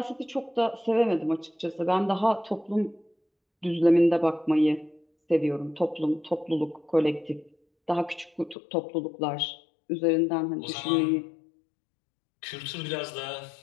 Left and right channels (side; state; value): right; drops out; at 8.6 s